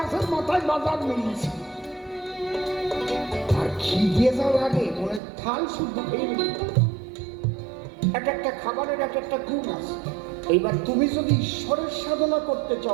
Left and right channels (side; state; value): left; drops out; at 5.2 s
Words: মাথায় বাজার মিলিয়েছে, আর খিদে যাওয়ার আগে মনে থাল শুদ্ধ খেয়ে নিল। একটা খাবারের একটা গুণ আছে। এইবার তুমি যদি ঈশ্বরের সাধনা করতে